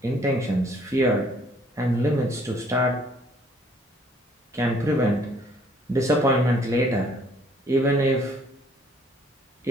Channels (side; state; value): both; normal; correlation 0.61